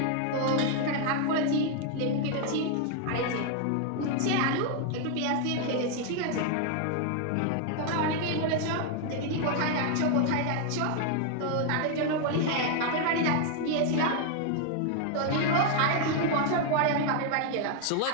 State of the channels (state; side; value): different; both; correlation 0.00